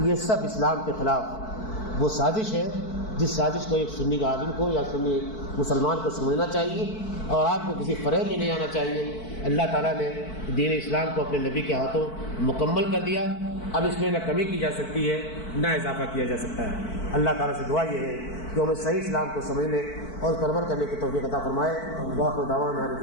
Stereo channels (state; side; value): late; right; 4.5 ms